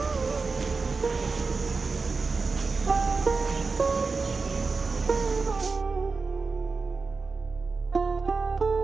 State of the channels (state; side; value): quieter; left; 4.3 dB